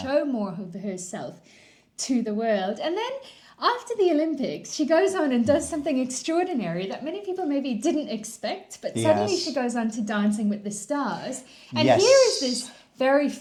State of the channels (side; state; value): both; identical; correlation 1.00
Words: more of herself to the world. And then after the Olympics, she goes on and does something extraordinary that many people maybe didn't expect, but suddenly she goes on to Dancing with the Stars. And here is this very